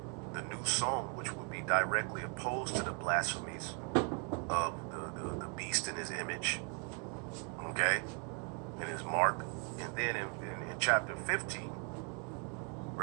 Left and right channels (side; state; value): left; quieter; 38.9 dB